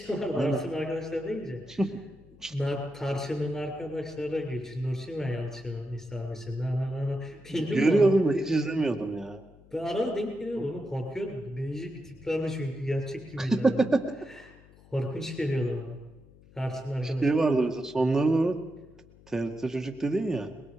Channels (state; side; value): noise; left; hum, 24 dB below the sound